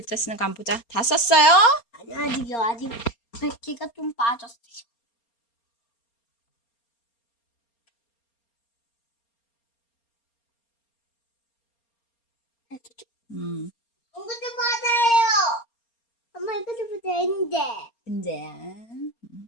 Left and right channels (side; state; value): right; late; 4.3 ms